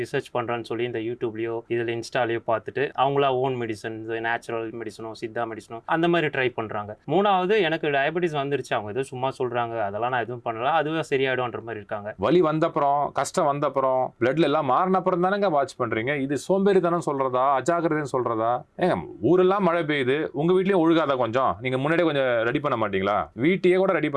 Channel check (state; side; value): identical; both; correlation 1.00